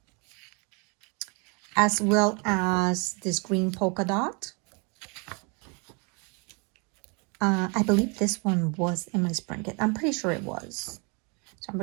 as well as this green polka dot. I believe this one was in my spring kit. I'm pretty sure it was. So I'm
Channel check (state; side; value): quieter; left; 33.0 dB